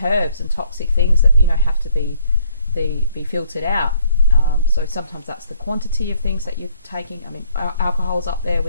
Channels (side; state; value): both; inverted; correlation -0.64